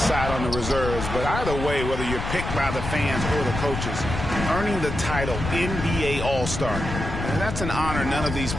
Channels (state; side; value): noise; left; rumble, 5 dB below the sound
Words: on the reserves. But either way, whether you're picked by the fans or the coaches, earning the title NBA All-Star, and that's an honor none of these